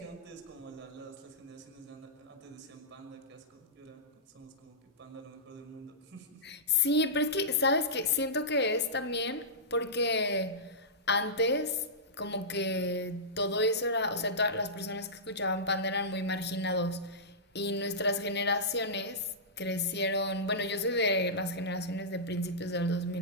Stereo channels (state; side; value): normal; both; correlation -0.15